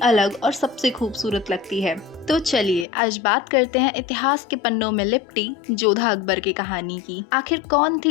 अलग और सबसे खूबसूरत लगती है। तो चलिए आज बात करते हैं इतिहास के पन्नों में लिपटी जोधा अकबर की कहानी की। आखिर कौन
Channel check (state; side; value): drops out; right; at 2.9 s